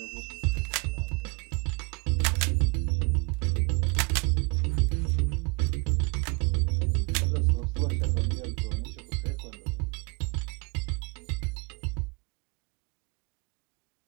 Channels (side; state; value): left; quieter; 30.6 dB